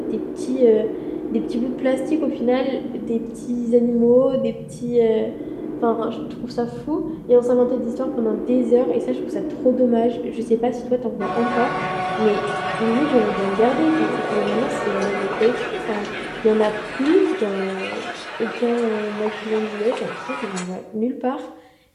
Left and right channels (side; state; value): both; identical; correlation 1.00